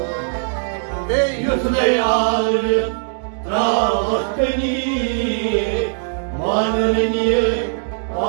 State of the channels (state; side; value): silent; left; digital silence